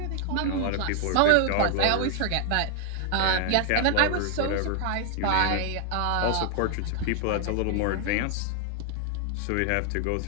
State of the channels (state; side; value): different; both; correlation 0.00